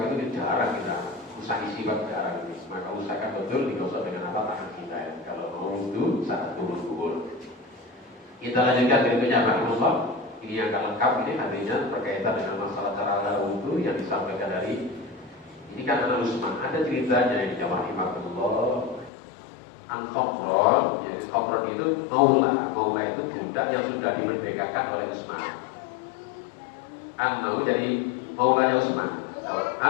itu jarang kita usahi siwak jarang ini. Maka usahakan betul digosok dengan tangan kita ya. Kalau mau wudu saat kubur-kubur. Kita lanjutkan berikutnya rahimahullah. Ini yang akan lengkap, ini artinya berkaitan dengan masalah cara wudhu yang disampaikan dari ini kan anak Usman. Ada ceritanya yang dijawab rahimahullah an Khomron. Jadi Khomron itu maula itu budak yang sudah dimerdekakan oleh Usman. An-Mau jadi maulanya Usman.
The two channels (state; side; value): drops out; right; at 19.1 s